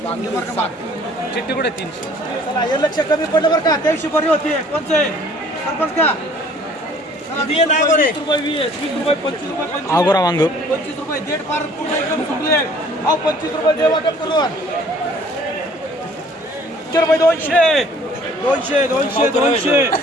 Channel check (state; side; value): normal; both; correlation 0.55